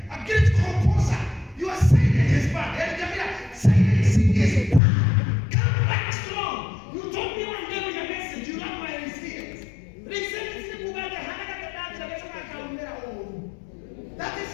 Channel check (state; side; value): drops out; right; at 4.8 s